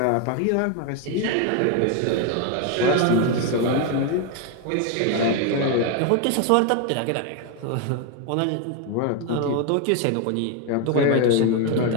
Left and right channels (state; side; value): different; both; correlation 0.01